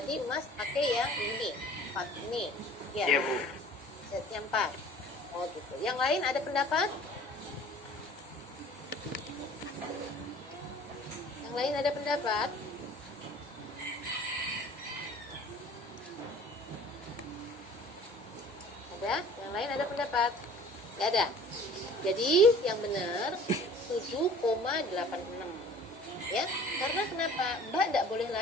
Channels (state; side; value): normal; both; correlation 0.48